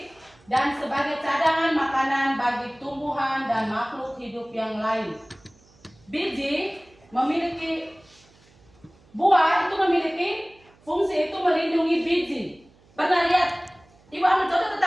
dan sebagai cadangan makanan bagi tumbuhan dan makhluk hidup yang lain. Biji memiliki buah itu memiliki fungsi itu melindungi biji. Pernah lihat? Ibu ambil contoh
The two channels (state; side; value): noise; right; hum, 29 dB below the sound